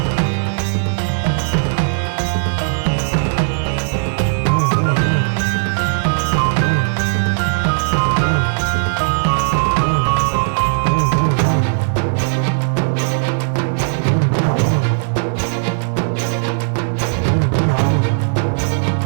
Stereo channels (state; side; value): silent; left; 66 dB below the other